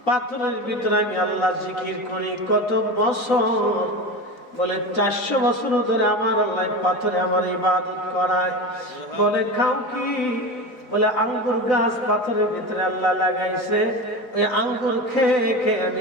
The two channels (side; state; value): right; late; 4.0 ms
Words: পাথরের ভিতরে আমি আল্লাহ জিকির করি কত বছর। বলে 400 বছর ধরে আমার আল্লাহ পাথরে আমার ইবাদত করায়। বলে খাও কি? বলে আঙ্গুর গাছ পাথরের ভিতরে আল্লাহ লাগাইছে, ওই আঙ্গুর খেয়ে খেয়ে